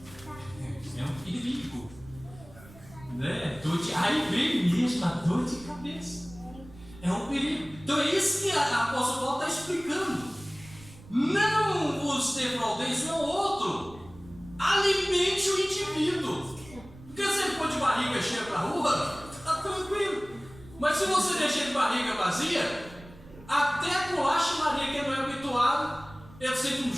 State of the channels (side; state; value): right; noise; rumble, 20 dB below the sound